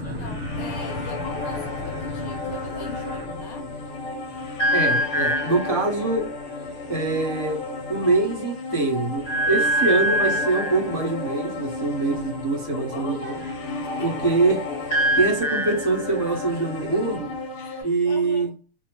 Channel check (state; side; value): late; right; 6.7 ms